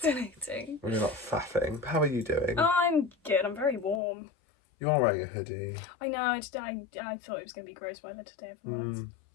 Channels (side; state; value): right; drops out; at 4.0 s